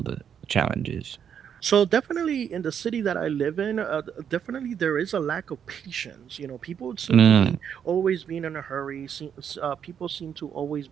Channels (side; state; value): left; quieter; 8.2 dB